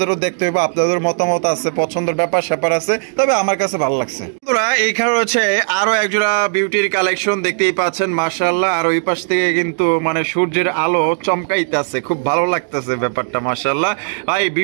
দেখতে হইব। আপনাদের মতামত আছে, পছন্দের ব্যাপার স্যাপার আছে, তবে আমার কাছে ভালো লাগছে। বন্ধুরা এইখানে রয়েছে আরো এক জোড়া বিউটির কালেকশন। দেখতেই পাচ্ছেন মাশাআল্লাহ। আর ওই পাশ থেকে কিন্তু মানে সূর্যের আলো চমকাইতেছে, খুব ভালো লাগতেছে ব্যাপারটা মাশাআল্লাহ। ভাই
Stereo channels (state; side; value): silent; left; digital silence